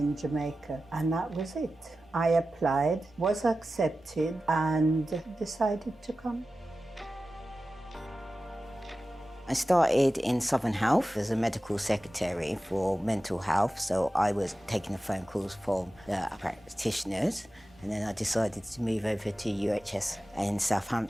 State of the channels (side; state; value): both; normal; correlation 0.94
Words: Jamaica, and that was it. I applied, was accepted, and decided to come. I started in Southern Health as a medical secretary for mental health, so I was taking the phone calls from the practitioners, and then I decided to move over to UHS in